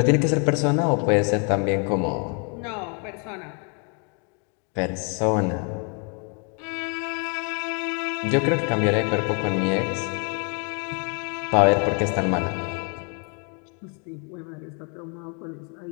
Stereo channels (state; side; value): quieter; right; 37.8 dB